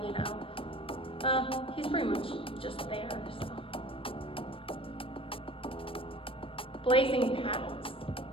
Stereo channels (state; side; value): late; right; 0.26 ms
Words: you know, he's pretty much just there. So. Blazing Paddles.